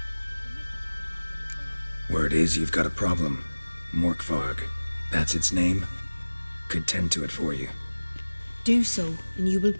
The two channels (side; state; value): both; inverted; correlation -1.00